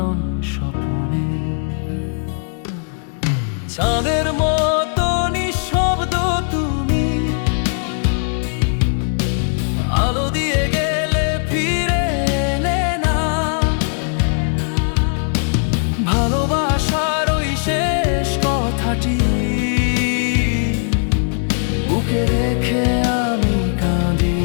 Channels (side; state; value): right; silent; digital silence